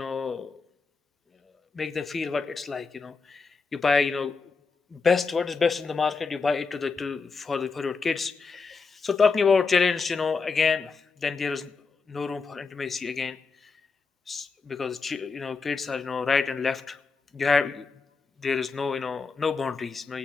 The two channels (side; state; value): right; quieter; 4.7 dB